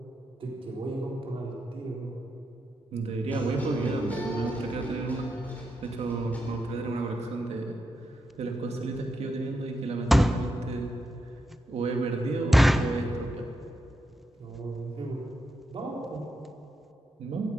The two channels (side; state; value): both; normal; correlation 0.84